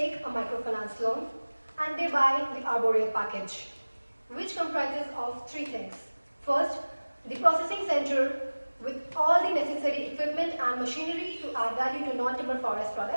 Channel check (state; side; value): inverted; both; correlation -1.00